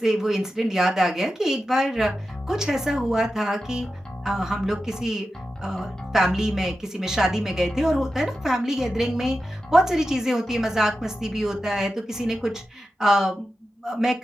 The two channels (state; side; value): normal; both; correlation 0.92